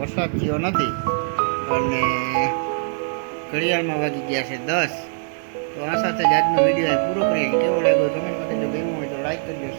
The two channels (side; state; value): left; silent; 64 dB below the other